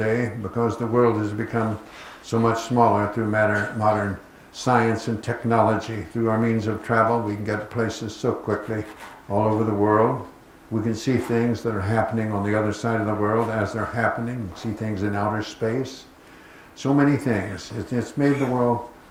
because the world has become so much smaller through modern science and technology. Through our means of travel, we can get places so quickly all over the world. We can see things that are happening on the other side of the world as they're happening, see things in outer space. So many things. It's made the world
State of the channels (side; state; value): both; identical; correlation 1.00